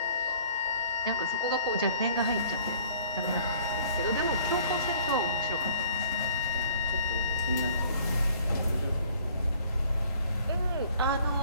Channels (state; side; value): inverted; both; correlation -0.55